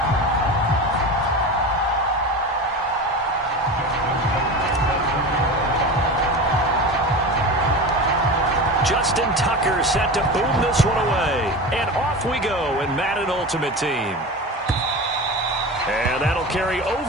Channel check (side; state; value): both; normal; correlation 0.29